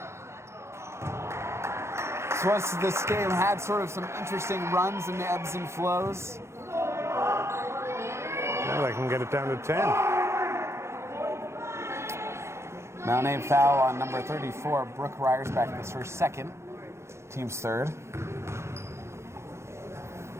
This game had sort of some interesting runs and ebbs and flows. Well, they can get it down to 10. Mount Abe foul on number 34, Brooke Ryersback. That's her second. Team's third.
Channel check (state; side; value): late; left; 0.13 ms